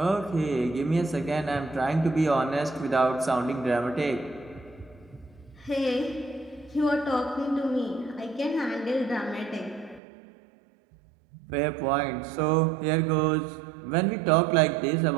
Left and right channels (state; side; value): drops out; left; at 10.0 s